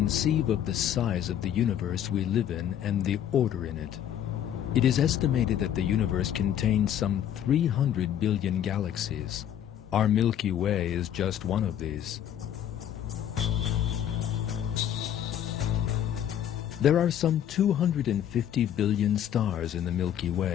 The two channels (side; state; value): right; quieter; 10.2 dB